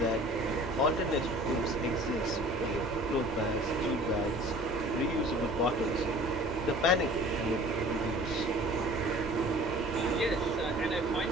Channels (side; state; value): both; normal; correlation 0.47